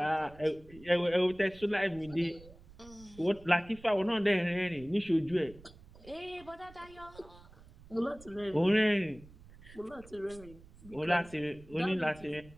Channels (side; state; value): right; noise; rumble, 21 dB below the sound